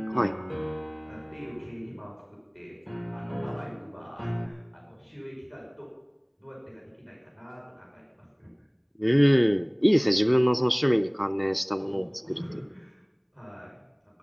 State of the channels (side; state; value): both; identical; correlation 1.00